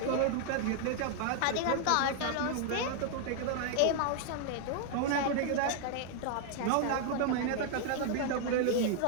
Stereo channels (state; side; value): different; both; correlation 0.00